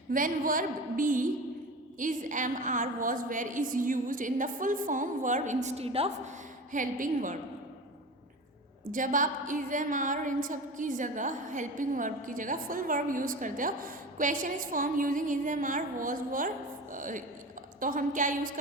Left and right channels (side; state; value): both; normal; correlation 0.32